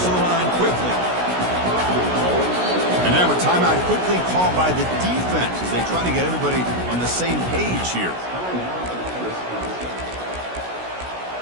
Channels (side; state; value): left; late; 16 ms